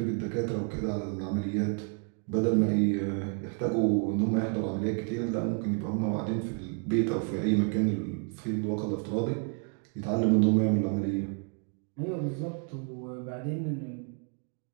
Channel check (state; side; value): quieter; left; 39.5 dB